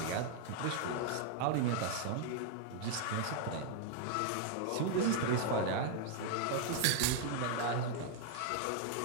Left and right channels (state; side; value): different; both; correlation 0.00